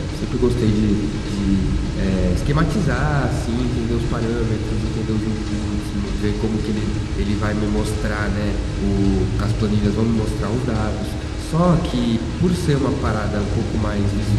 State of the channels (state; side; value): identical; both; correlation 1.00